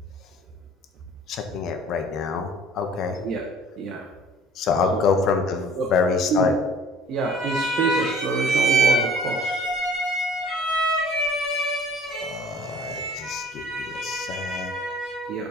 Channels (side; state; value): both; normal; correlation 0.51